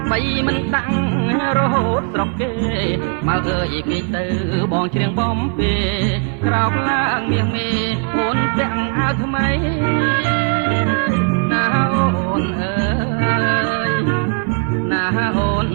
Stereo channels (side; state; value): left; quieter; 37.2 dB